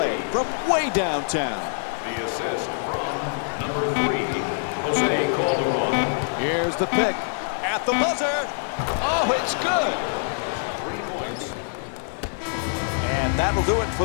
from way downtown. The assist from number 3, Jose Calderon. Here's the pick at the buzzer. Oh, it's good. 3 points. And that'll do it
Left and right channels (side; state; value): right; silent; 60 dB below the other